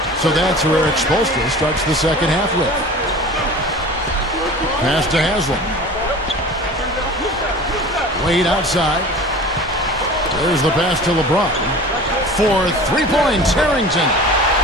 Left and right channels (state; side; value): normal; both; correlation 0.39